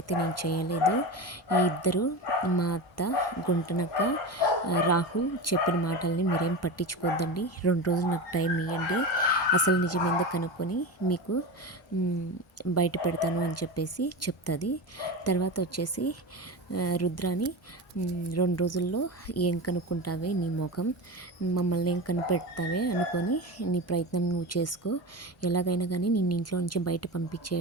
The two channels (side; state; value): both; normal; correlation 0.24